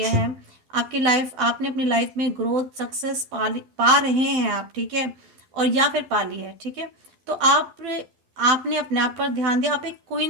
है, आपकी लाइफ, आपने अपनी लाइफ में ग्रोथ सक्सेस पा रहे हैं आप, ठीक है, और या फिर पा ली है, ठीक है। तो आपने अपने आप पर ध्यान दिया, आप एक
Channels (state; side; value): late; left; 12 ms